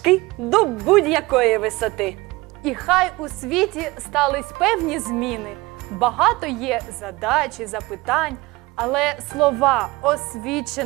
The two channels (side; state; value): left; quieter; 21.7 dB